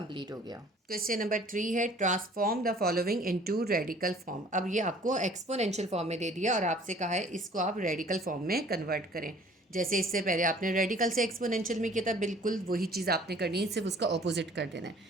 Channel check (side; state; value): both; normal; correlation 0.52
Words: हो गया। क्वेश्चन नंबर 3 है, transform the following into radical form. अब ये आपको एक्सपोनेंशियल फॉर्म में दे दिया और आपसे कहा है इसको आप रेडिकल फॉर्म में कन्वर्ट करें। जैसे इससे पहले आपने रेडिकल से एक्सपोनेंशियल में किया था, बिल्कुल वही चीज़ आपने करनी है, सिर्फ उसका ऑपोजिट कर देना है।